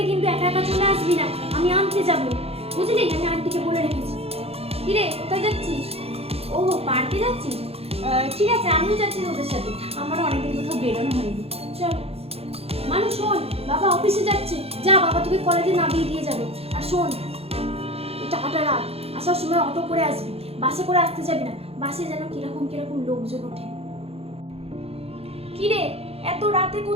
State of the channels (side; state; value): left; late; 0.29 ms